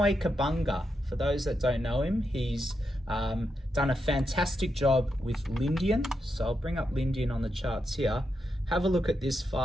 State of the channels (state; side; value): normal; both; correlation 0.84